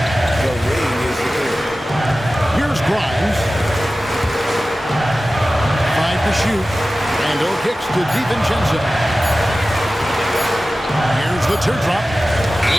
The ring is the thing. Here's Grimes. 5 to shoot. Randall kicks to DiVincenzo. Here's the teardrop.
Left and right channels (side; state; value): both; normal; correlation 0.96